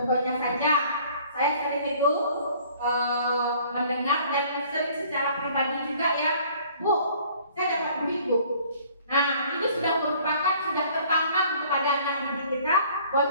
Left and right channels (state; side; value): inverted; both; correlation -0.55